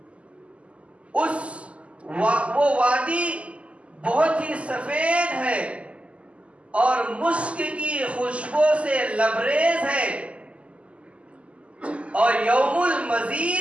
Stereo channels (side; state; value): left; late; 0.060 ms